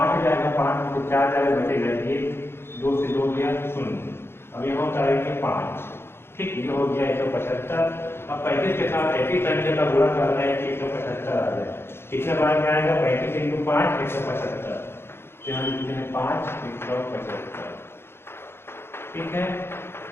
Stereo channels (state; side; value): late; right; 0.11 ms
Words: जाएगा, 5 में से 4 जाएगा, बचेगा 1, 2 से 2 गया 0। अब यहाँ उतारेंगे 5। ठीक, ये हो गया 175। अब 35 के साथ ऐसी संख्या का गुणा करना है कि 175 आ जाए। कितने बार में आएगा 35 × 5 175, तो यहाँ लिखते हैं 5 175। ठीक है,